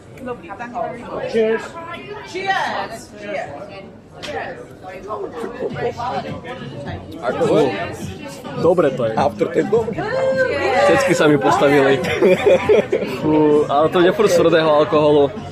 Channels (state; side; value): identical; both; correlation 1.00